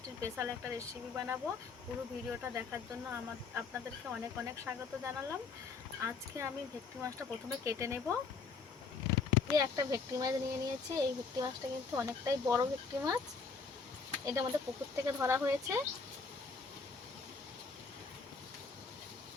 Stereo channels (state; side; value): quieter; right; 4.8 dB